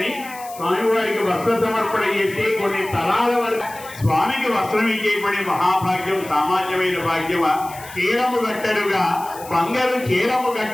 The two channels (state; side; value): noise; left; hiss, 17 dB below the sound